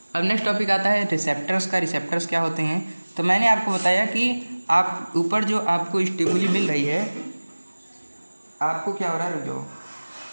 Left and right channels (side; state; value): both; inverted; correlation -1.00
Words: अब नेक्स्ट टॉपिक आता है रिसेप्टर्स का। रिसेप्टर्स क्या होते हैं? तो मैंने आपको बताया कि आप ऊपर जो आपको स्टिमुली मिल रही है, आपको क्या हो रहा है, रुक जाओ